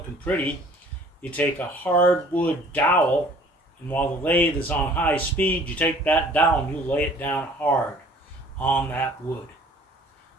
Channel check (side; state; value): both; normal; correlation 0.53